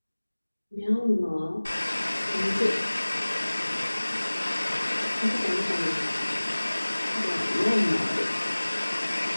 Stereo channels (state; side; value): inverted; both; correlation -1.00